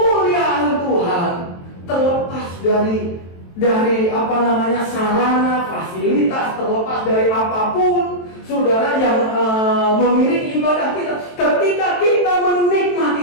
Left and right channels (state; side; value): late; right; 23 ms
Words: Tuhan, terlepas dari sarana, fasilitas, terlepas dari apapun, saudara, yang mengiringi ibadah kita. Ketika kita